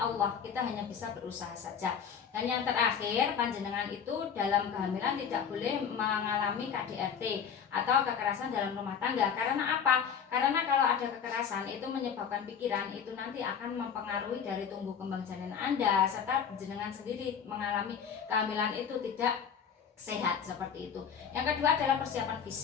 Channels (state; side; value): quieter; right; 7.3 dB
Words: Kita hanya bisa berusaha saja. Dan yang terakhir, panjenengan itu dalam kehamilan tidak boleh mengalami KDRT atau kekerasan dalam rumah tangga. Karena apa? Karena kalau ada kekerasan itu menyebabkan pikiran, itu nanti akan mempengaruhi dari tumbuh kembang janin Anda, serta jenengan sendiri mengalami kehamilan itu tidak sehat seperti itu. Yang kedua adalah persiapan